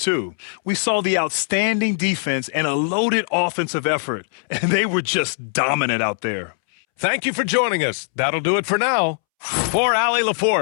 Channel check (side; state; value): right; silent; 65 dB below the other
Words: We saw the outstanding defense and a loaded offensive effort, and they were just dominant out there. Thank you for joining us. That'll do it for now. For Allie